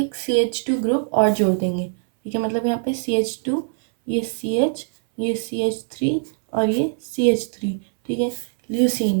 CH2 ग्रुप और जोड़ देंगे। ठीक है, मतलब यहाँ पे CH2, ये CH, ये CH3 और ये CH3। ठीक है,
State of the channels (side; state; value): left; silent; 62 dB below the other